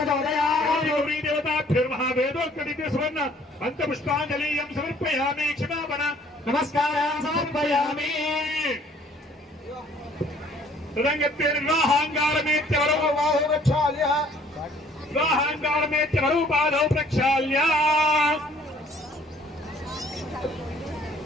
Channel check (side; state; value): both; normal; correlation 0.58